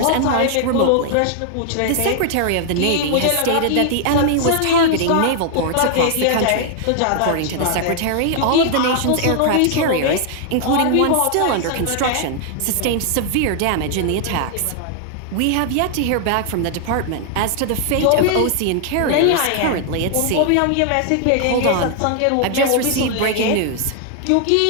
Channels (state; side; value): different; both; correlation 0.00